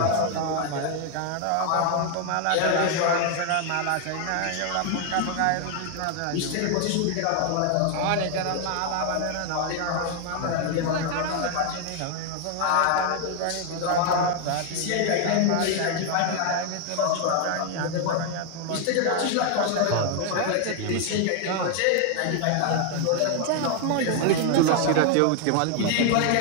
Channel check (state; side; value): different; both; correlation 0.00